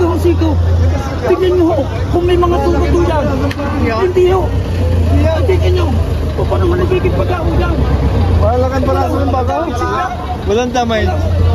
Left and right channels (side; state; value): both; identical; correlation 1.00